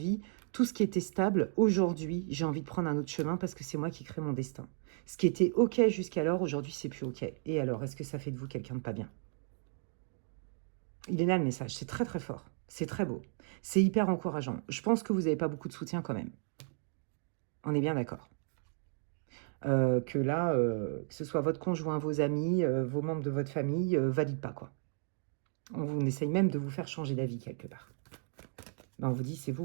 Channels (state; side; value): silent; left; 55 dB below the other